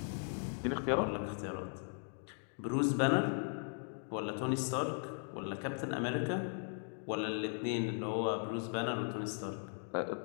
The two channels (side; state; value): right; silent; 52 dB below the other